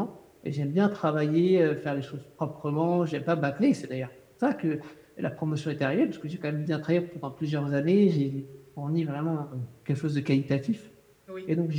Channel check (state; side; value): identical; both; correlation 1.00